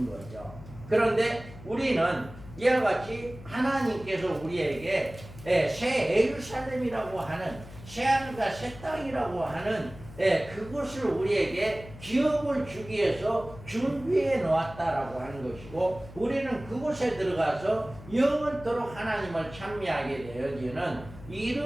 거죠. 그런데 우리는 이와 같이 하나님께서 우리에게 새 예루살렘이라고 하는 새하늘과 새 땅이라고 하는 그것을 우리에게 기업을 주기 위해서 준비해 놓았다라고 하는 것이고, 우리는 그곳에 들어가서 영원토록 하나님을 찬미하게 되어지는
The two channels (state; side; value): noise; left; hum, 16 dB below the sound